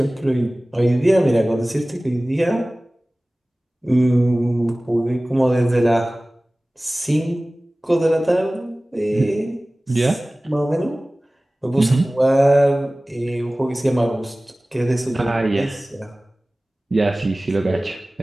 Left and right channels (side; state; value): both; normal; correlation 0.98